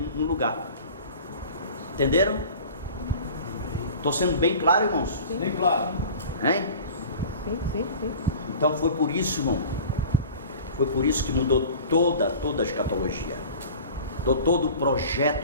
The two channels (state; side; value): inverted; both; correlation -0.41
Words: no lugar. Entenderam? Estou sendo bem claro, irmãos? Bem claro. Hein? Sim. Então foi por isso, irmão. Foi por isso que mudou toda a escatologia. Mudou todo o